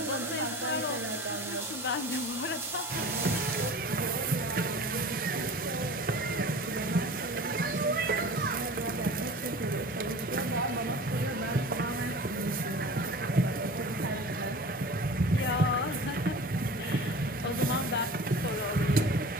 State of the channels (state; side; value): normal; both; correlation 0.39